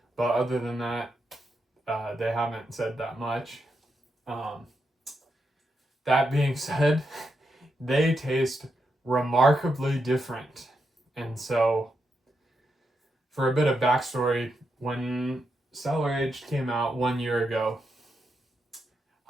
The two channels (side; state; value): both; normal; correlation 0.84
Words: but other than that, they haven't said that much. That being said, they taste remarkably different. And so, for a bit of backstory, when Cellar Aged came out 1 year ago,